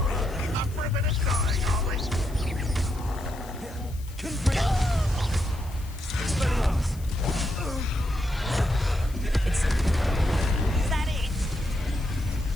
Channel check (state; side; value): noise; left; hiss, 21 dB below the sound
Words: Up for a bit of dying, are we? Confringo. Expelliarmus. Is that it?